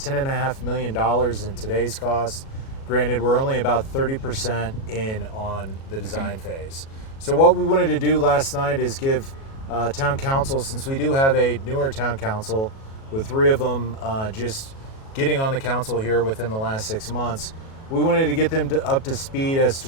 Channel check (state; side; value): late; right; 37 ms